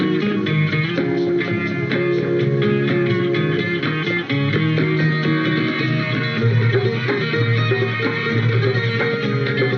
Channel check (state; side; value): identical; both; correlation 1.00